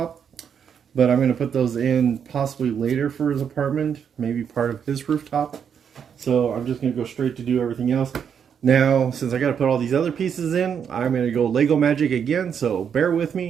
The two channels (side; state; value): left; quieter; 7.6 dB